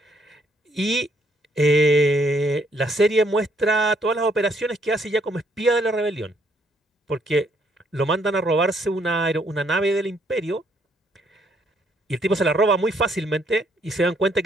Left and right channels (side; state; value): both; normal; correlation 0.70